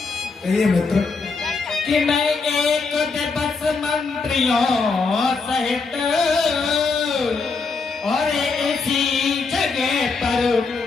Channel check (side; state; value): right; quieter; 4.5 dB